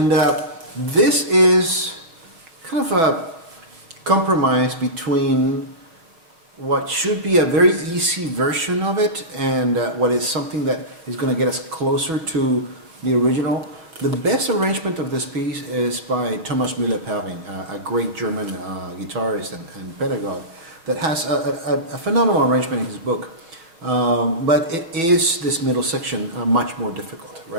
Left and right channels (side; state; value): left; late; 6.1 ms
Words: this is kind of a compromise between what should be a very easy version of it and what is something that is going to get us closer to the original. The best arrangement of this piece is by Thomas Müller-Perling, a great German guitarist and pedagogue that has a phenomenal arrangement in his book. But it is this middle section much more difficult,